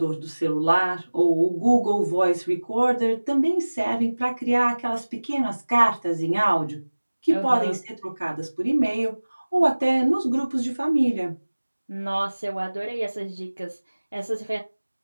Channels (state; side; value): inverted; both; correlation -1.00